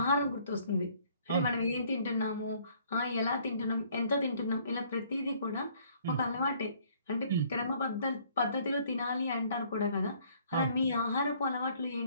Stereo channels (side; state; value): both; inverted; correlation -0.61